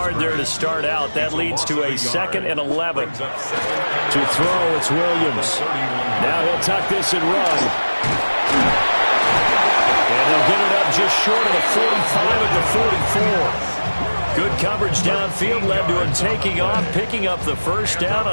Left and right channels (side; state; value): both; inverted; correlation -1.00